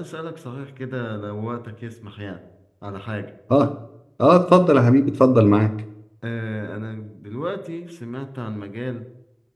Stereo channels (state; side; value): identical; both; correlation 1.00